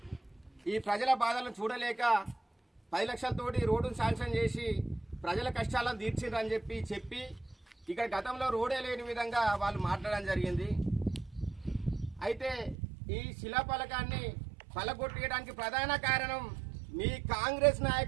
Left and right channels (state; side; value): drops out; left; at 12.8 s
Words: ఈ ప్రజల బాధలను చూడలేక 10 లక్షలతోటి రోడ్డును శాంక్షన్ చేసి ప్రజల కష్టాలను తీర్చిరని చెప్పి ఇక్కడ గతంలో రోడే లేని విధంగా వాళ్ళు మాట్లాడడం జరిగింది. అయితే ఈ శిలాఫలకాన్ని పలగొట్టడానికి ప్రధాన కారణం మీ కాంగ్రెస్